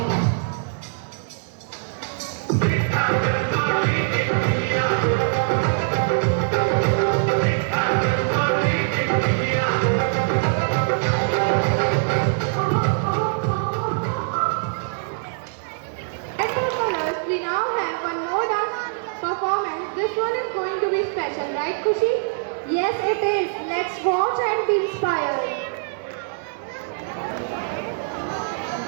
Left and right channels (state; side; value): silent; left; digital silence